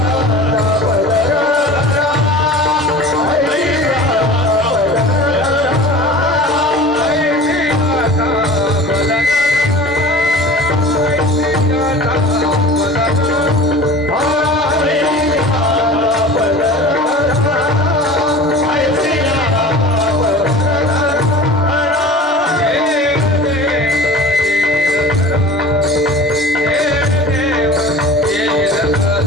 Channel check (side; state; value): both; normal; correlation 0.39